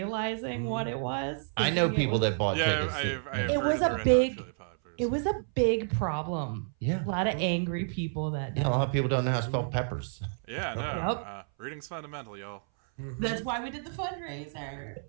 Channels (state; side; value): silent; left; 58 dB below the other